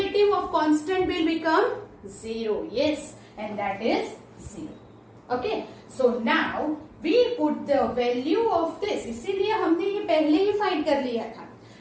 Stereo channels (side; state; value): both; identical; correlation 1.00